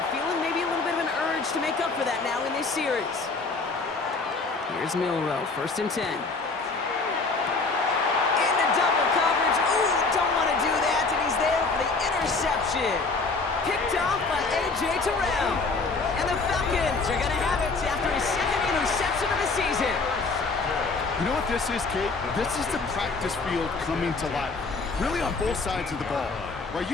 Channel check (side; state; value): right; quieter; 4.0 dB